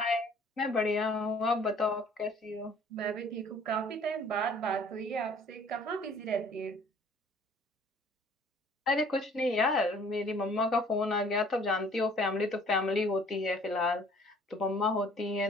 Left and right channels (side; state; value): both; normal; correlation 0.55